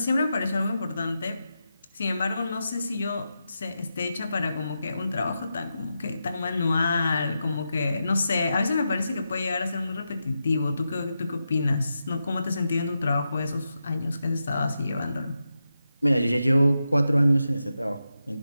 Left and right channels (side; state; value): both; inverted; correlation -0.88